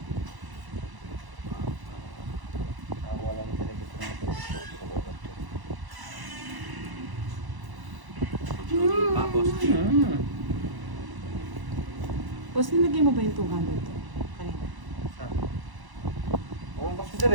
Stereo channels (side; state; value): left; late; 1.0 ms